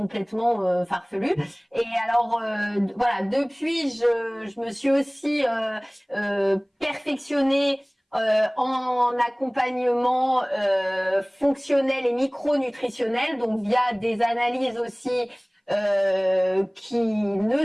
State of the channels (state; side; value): identical; both; correlation 1.00